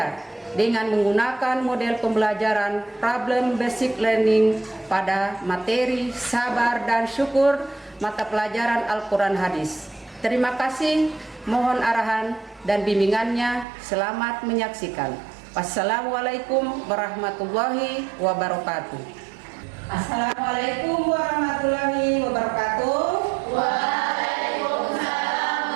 dengan menggunakan model pembelajaran problem basic learning pada materi sabar dan syukur mata pelajaran Al-Quran Hadis. Terima kasih, mohon arahan dan bimbingannya. Selamat menyaksikan. Wassalamualaikum warahmatullahi wabarakatuh. Assalamualaikum warahmatullahi wabarakatuh. Waalaikumsalam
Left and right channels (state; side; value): drops out; left; at 13.7 s